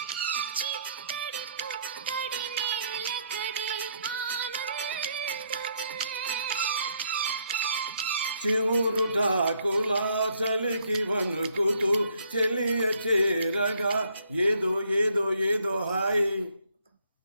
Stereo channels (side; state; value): both; inverted; correlation -0.69